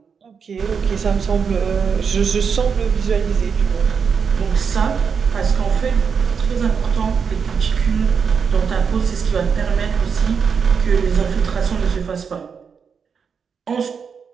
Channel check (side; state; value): left; quieter; 6.3 dB